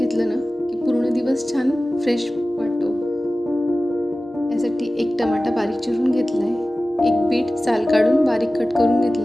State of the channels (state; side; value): normal; both; correlation 0.96